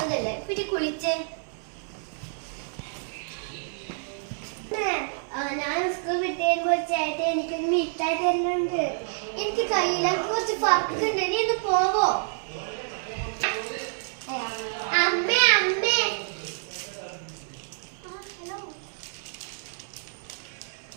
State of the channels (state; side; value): silent; left; digital silence